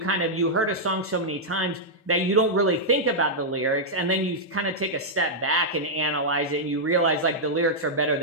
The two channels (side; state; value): both; normal; correlation -0.07